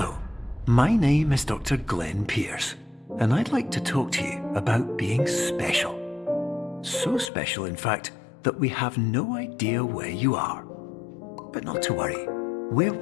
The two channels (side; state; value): right; drops out; at 7.3 s